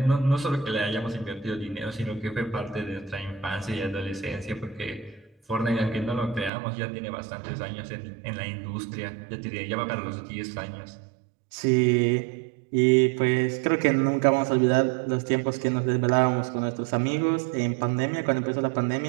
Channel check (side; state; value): left; drops out; at 6.5 s